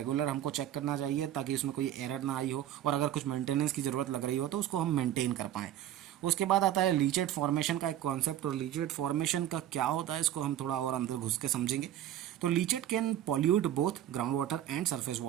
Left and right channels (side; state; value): left; quieter; 11.9 dB